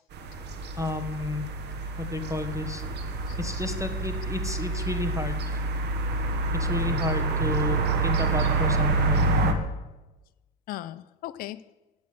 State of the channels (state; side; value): normal; both; correlation -0.05